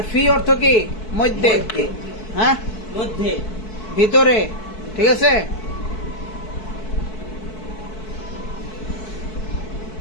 ফি অর্থ কি? মধ্যে। হ্যাঁ, মধ্যে, ভিতরে। ঠিক আছে।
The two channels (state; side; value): late; right; 4.6 ms